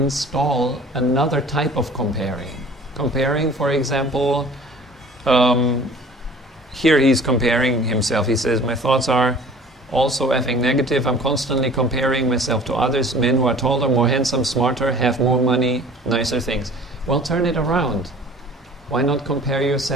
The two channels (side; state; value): both; normal; correlation 0.47